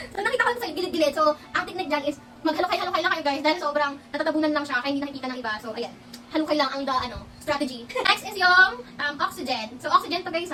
So, nakita ko sa gilid-gilid. So, ang technique dyan is maghalukay-halukay lang kayo guys. Dahil sobrang natatabunan lang siya kaya hindi nakikita ng iba. So, ayan. Halukay lang ang strategy. Next is yung oxygen. So, oxygen to guys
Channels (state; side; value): identical; both; correlation 1.00